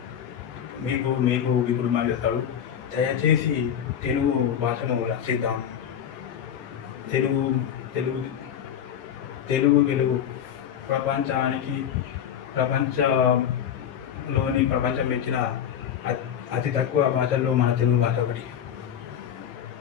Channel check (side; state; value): right; quieter; 9.2 dB